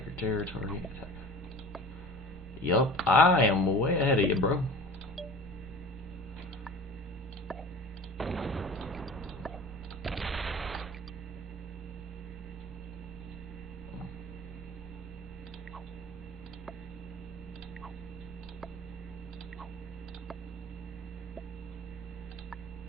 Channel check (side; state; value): both; normal; correlation 0.40